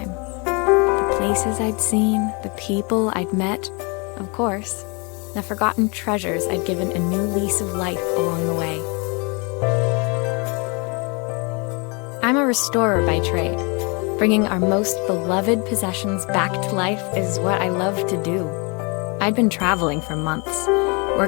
The places I'd seen, the people I'd met, of course, the forgotten treasures I'd given a new lease of life along the way. I'm a restorer by trade. Bringing our most beloved possessions back to life is what I love to do. I'd been traveling for months,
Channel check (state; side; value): quieter; right; 31.5 dB